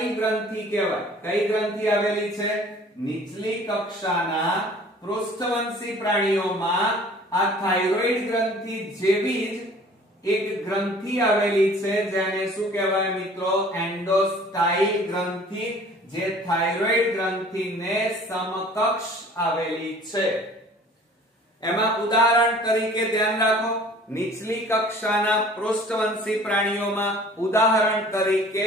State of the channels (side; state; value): both; normal; correlation 0.50